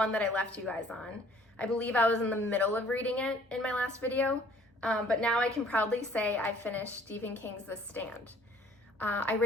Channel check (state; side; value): normal; both; correlation 0.56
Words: that I left you guys on. I believe I was in the middle of reading it in my last video, but now I can proudly say I finished Stephen King's The Stand. I